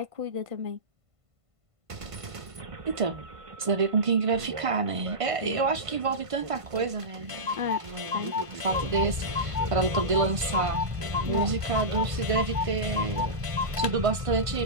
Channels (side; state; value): left; late; 1.5 ms